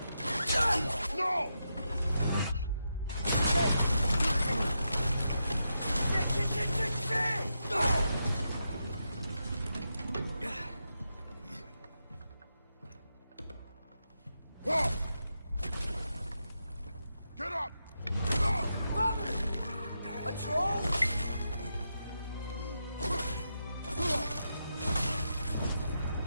No! Shit! Get up! Father! A troll?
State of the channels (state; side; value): inverted; both; correlation -0.86